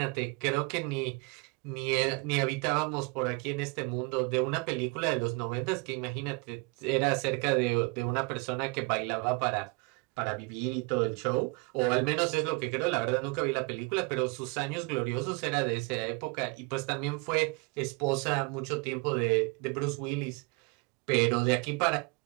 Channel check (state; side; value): quieter; left; 29.2 dB